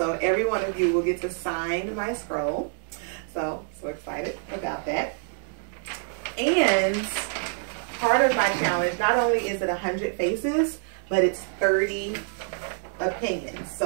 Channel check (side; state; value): left; silent; digital silence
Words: every one of you will get to sign my scroll. So excited about that. And part of my challenge, not only is it 100 faces, but it's 30 opinions.